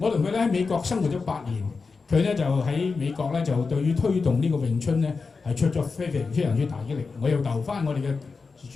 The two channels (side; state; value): right; quieter; 4.6 dB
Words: 同佢咧喺美國生活咗8年，佢咧就喺美國咧就對於推動呢個詠春咧係出咗非常之大嘅力。我又留翻我哋嘅